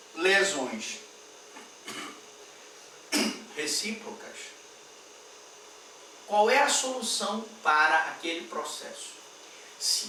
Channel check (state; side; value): identical; both; correlation 1.00